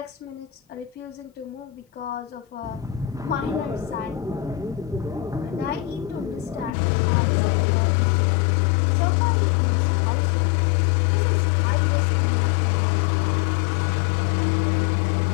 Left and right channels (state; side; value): drops out; right; at 6.7 s